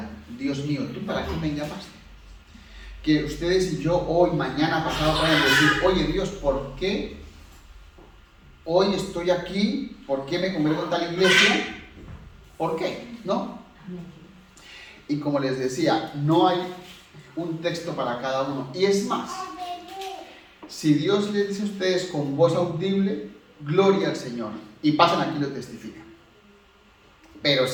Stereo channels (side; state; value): both; identical; correlation 1.00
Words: Dios mío, ¿tú para qué me llamaste? Que ustedes y yo hoy, mañana, pasado puedan decir, oye Dios, ¿por qué hoy estoy aquí? ¿Por qué me congrego en tal iglesia? ¿Por qué? ¿No? Y como les decía, no hay un texto para cada uno. Y es más, si Dios les dice a ustedes con voz audible, gloria al Señor, y pasan aquí y lo testifican. Pero